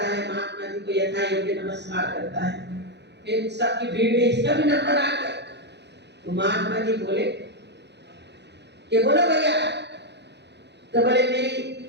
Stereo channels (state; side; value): late; left; 0.50 ms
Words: है, महात्मा जी को यथा योग्य नमस्कार करता है। फिर सबकी भीड़ में इसका भी नंबर आ गया। तो महात्मा जी बोले कि बोलो भैया। तो बोले मेरी